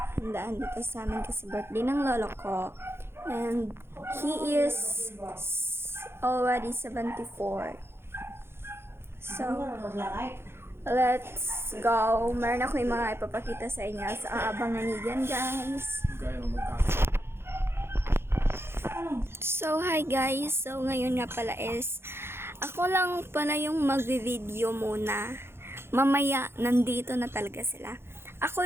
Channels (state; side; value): late; left; 0.12 ms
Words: dito sa amin kasi birthday ng lolo ko. And he is already 74. So, let's go. Meron ako yung mga ipapakita sa inyo. So, abangan niyo dyan, guys. So, hi guys. So, ngayon nga pala is, ako lang pala yung magvi-video muna. Mamaya, nandito na talaga sila. Ako